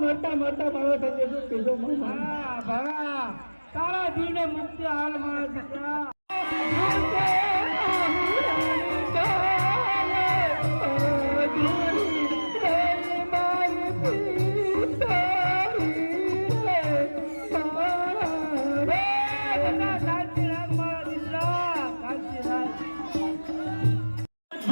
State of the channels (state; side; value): inverted; both; correlation -1.00